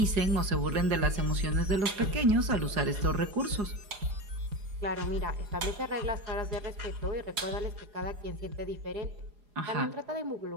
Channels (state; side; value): late; left; 4.8 ms